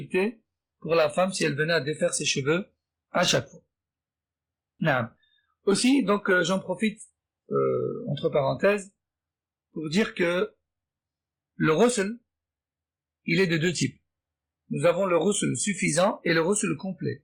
pour la femme si elle venait à défaire ses cheveux à chaque fois. Non. Aussi, donc j'en profite entre parenthèses pour dire que le ghusl, il est de 2 types. Nous avons le ghusl suffisant et le ghusl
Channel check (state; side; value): identical; both; correlation 1.00